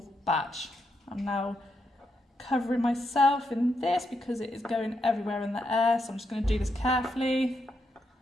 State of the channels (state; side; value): normal; both; correlation 0.81